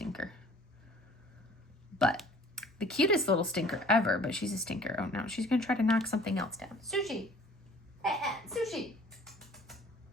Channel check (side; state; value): both; normal; correlation 0.52